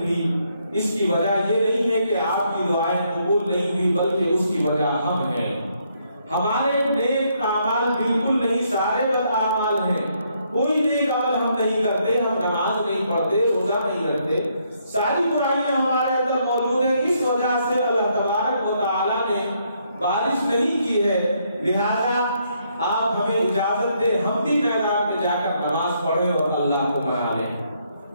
اس کی وجہ یہ نہیں ہے کہ آپ کی دعائیں قبول نہیں ہوئی، بلکہ اس کی وجہ ہم ہیں، ہمارے نیک اعمال بالکل نہیں، سارے بد اعمال ہیں، کوئی نیک عمل ہم نہیں کرتے، ہم نماز نہیں پڑھتے، روزہ نہیں رکھتے، ساری برائیاں ہمارے اندر موجود ہیں، اس وجہ سے اللہ تبارک و تعالیٰ نے بارش نہیں کی ہے، لہذا آپ ہمیں اجازت دیں ہم بھی میدان میں جا کر نماز پڑھیں اور اللہ کو منا لیں،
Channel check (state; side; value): inverted; both; correlation -0.73